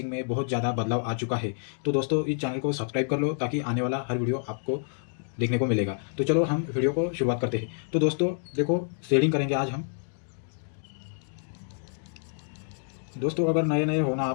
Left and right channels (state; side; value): silent; right; digital silence